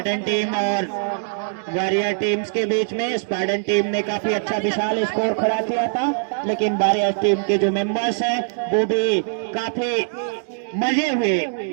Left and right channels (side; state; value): left; silent; digital silence